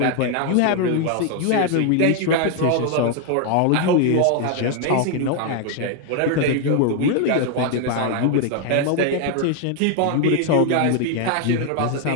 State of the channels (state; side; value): different; both; correlation 0.01